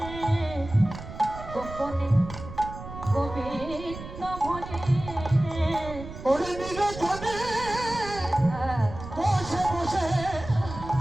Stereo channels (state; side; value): noise; right; rumble, 12 dB below the sound